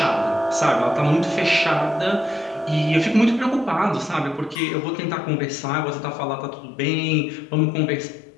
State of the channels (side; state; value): right; drops out; at 4.5 s